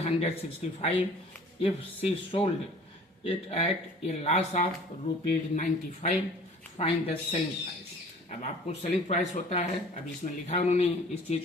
if she sold it at a loss of ₹95, find the selling price। अब आपको सेलिंग प्राइस होता है, अब इसमें लिखा उन्होंने इस चीज़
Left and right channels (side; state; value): both; normal; correlation 0.49